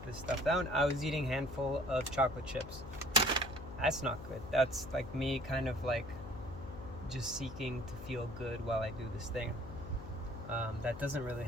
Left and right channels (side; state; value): left; noise; hum, 12 dB below the sound